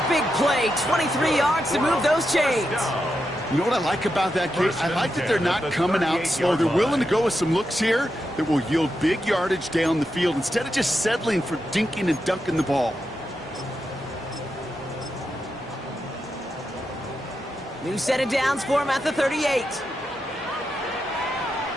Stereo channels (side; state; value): both; normal; correlation 0.86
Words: big play, 23 yards to move those chains. You know what I like about that, Kate? I like that they're not coming out slow. They're willing to go with some looks here that will yield big yardage down the field instead of just settling for dinking and dunking the ball. New set of downs for him at the 38.